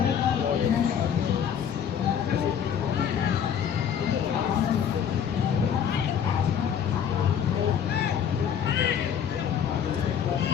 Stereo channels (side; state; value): right; quieter; 8.3 dB